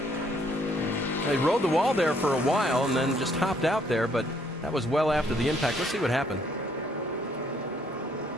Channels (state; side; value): normal; both; correlation 0.67